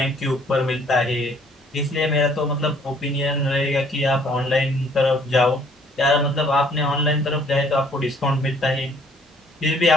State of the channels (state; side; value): normal; both; correlation 0.60